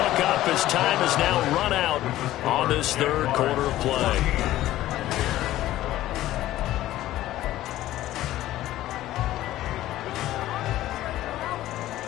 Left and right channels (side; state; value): right; quieter; 14.7 dB